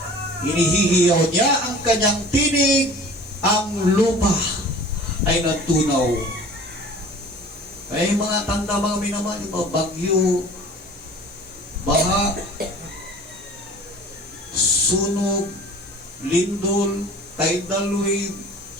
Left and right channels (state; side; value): normal; both; correlation 0.43